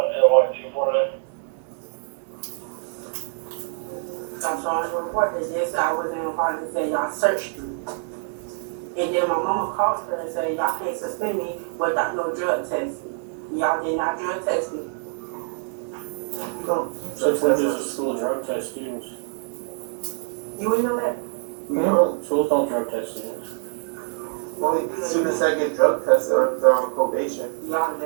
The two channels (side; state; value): left; silent; 62 dB below the other